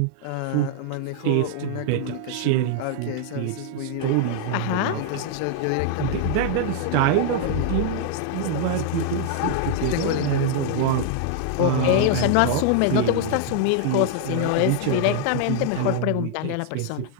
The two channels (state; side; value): different; both; correlation 0.00